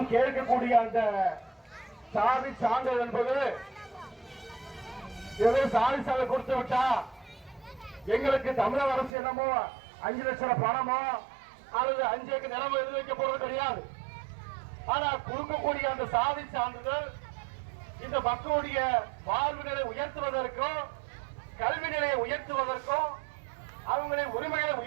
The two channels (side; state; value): left; drops out; at 9.1 s